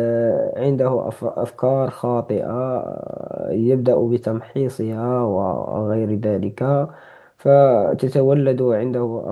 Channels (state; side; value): identical; both; correlation 1.00